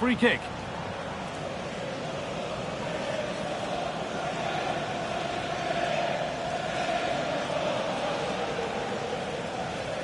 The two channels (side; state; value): both; identical; correlation 1.00